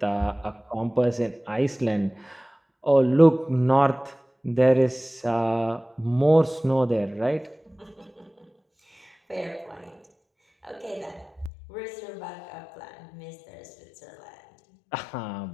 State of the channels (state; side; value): drops out; right; at 11.5 s